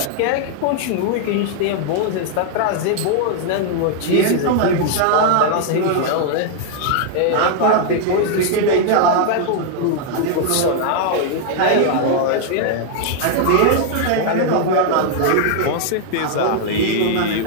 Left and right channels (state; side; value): different; both; correlation 0.00